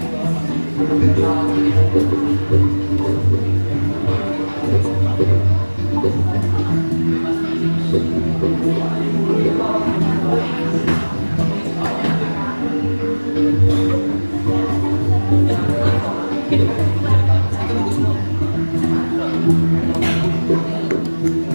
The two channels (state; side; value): inverted; both; correlation -1.00